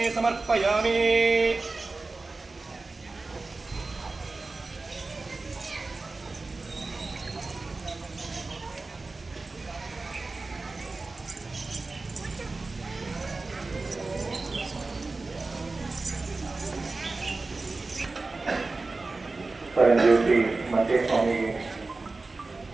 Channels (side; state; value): left; quieter; 3.5 dB